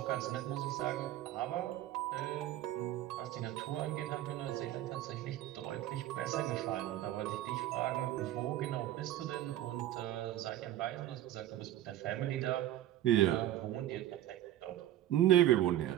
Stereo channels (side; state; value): left; quieter; 13.3 dB